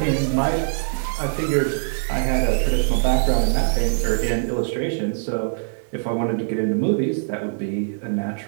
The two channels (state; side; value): silent; left; digital silence